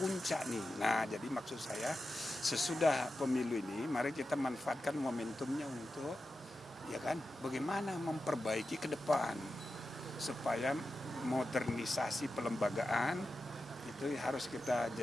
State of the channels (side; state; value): both; normal; correlation 0.91